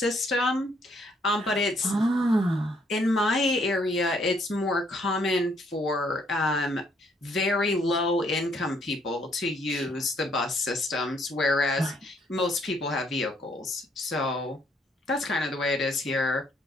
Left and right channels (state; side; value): normal; both; correlation 0.68